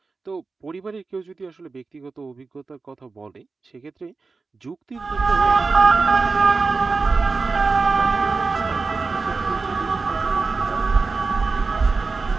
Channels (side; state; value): left; quieter; 4.2 dB